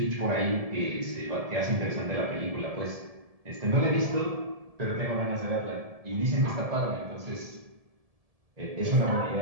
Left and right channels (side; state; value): left; late; 1.7 ms